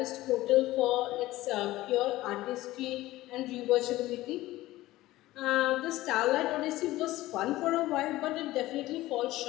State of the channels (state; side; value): quieter; right; 16.9 dB